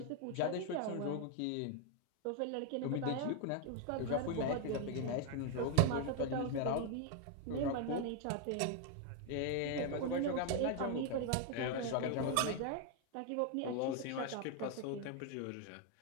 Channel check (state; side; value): different; both; correlation 0.01